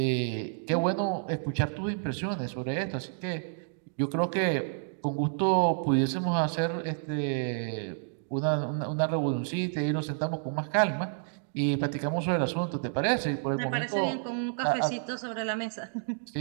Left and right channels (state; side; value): silent; left; digital silence